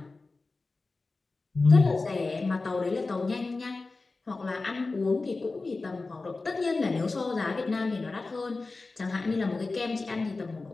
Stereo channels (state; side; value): quieter; right; 3.6 dB